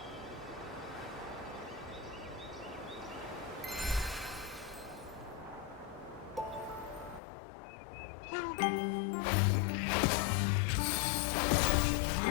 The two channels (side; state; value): right; drops out; at 7.2 s